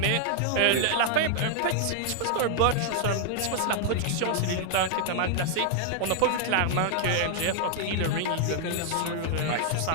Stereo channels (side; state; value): both; different; correlation 0.00